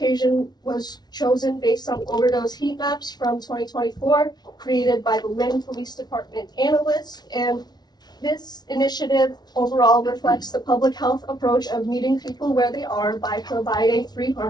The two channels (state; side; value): late; right; 0.19 ms